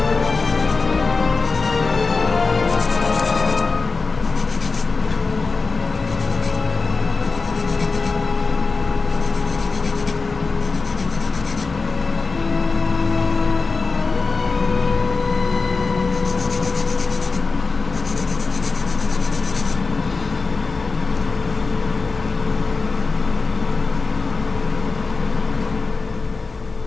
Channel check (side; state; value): right; quieter; 4.2 dB